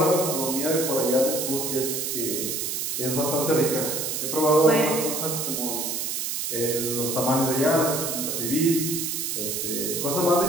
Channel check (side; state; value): right; noise; hiss, 2 dB below the sound